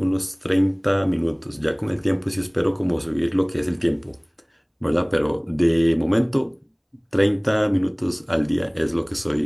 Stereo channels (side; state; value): both; identical; correlation 1.00